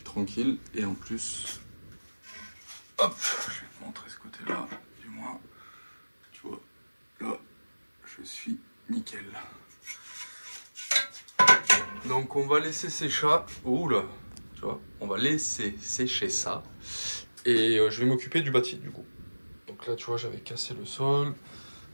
tranquille. Et en plus, hop, je vais te montrer ce côté-là, du moins. Tu vois, là, je suis nickel. Donc, on va laisser sécher. Ouh là, tu vois, on va laisser sécher ça. Et je vais m'occuper du bâti, du coup. Donc là, tu vois, j'avais cassé le sol.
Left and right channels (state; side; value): inverted; both; correlation -1.00